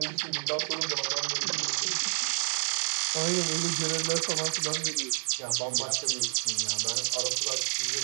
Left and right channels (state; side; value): silent; left; digital silence